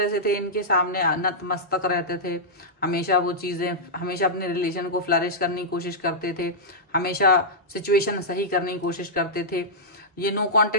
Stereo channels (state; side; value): normal; both; correlation -0.10